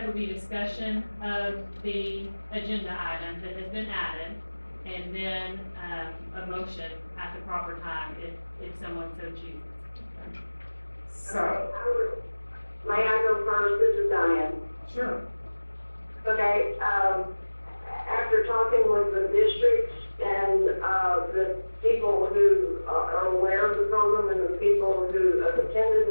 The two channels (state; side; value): inverted; both; correlation -1.00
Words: would be discussion of the agenda item that has been added, and then a motion at the proper time if someone so chooses. So, May I go first? This is Diane. sure. Okay, after talking with the districts and the people who are aware of the program and the people who have attended